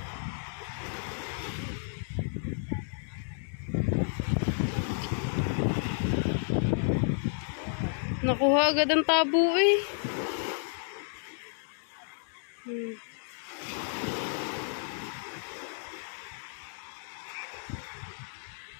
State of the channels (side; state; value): right; silent; digital silence